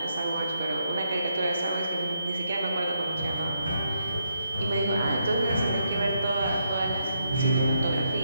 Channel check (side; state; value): both; inverted; correlation -0.79